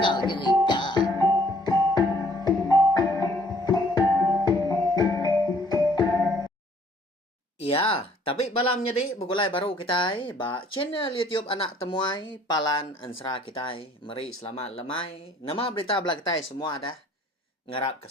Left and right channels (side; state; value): both; normal; correlation 0.59